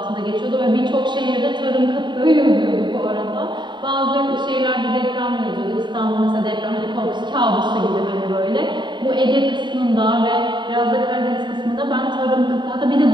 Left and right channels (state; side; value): late; left; 0.22 ms